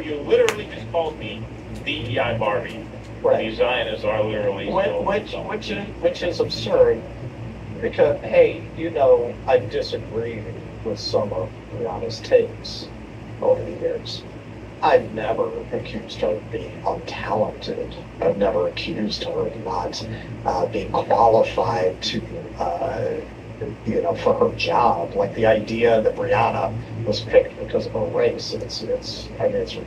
You literally just called me DEI Barbie. Right. These Zionists are literally which is absurd, because hey, I disagree with some of Rihanna's takes over the years. I've never accused her of being untalented. I've never accused her of not being qualified to, for her job. Like the idea that Rihanna was picked because of her race, it's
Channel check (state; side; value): identical; both; correlation 1.00